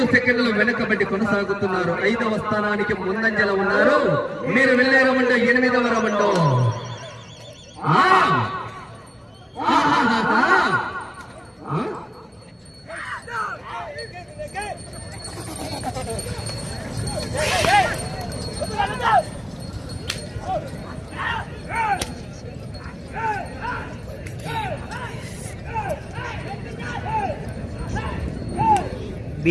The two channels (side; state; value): both; identical; correlation 1.00